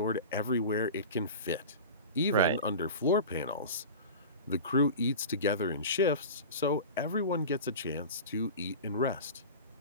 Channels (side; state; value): both; inverted; correlation -0.32